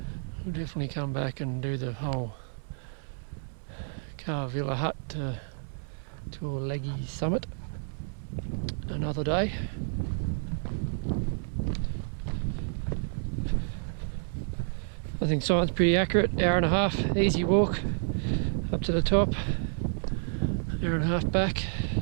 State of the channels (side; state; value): left; silent; 58 dB below the other